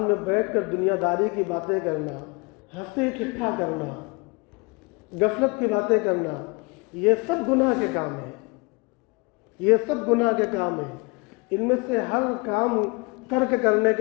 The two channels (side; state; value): right; quieter; 29.0 dB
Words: بیٹھ کر دنیا داری کی باتیں کرنا، ہنسی ٹھٹھا کرنا، غفلت کی باتیں کرنا، یہ سب گناہ کے کام ہیں۔ یہ سب گناہ کے کام ہیں۔ ان میں سے ہر کام ترک کرنے